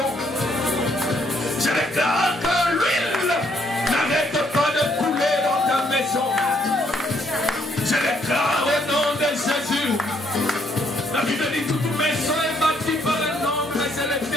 Je déclare que l'huile n'arrête pas de couler dans ta maison. Je déclare au nom de Jésus. La Bible dit toute maison est bâtie par le nom, mais c'est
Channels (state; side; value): normal; both; correlation 0.70